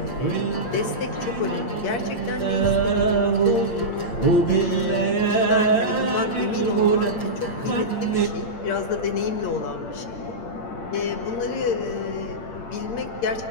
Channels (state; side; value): late; right; 8.7 ms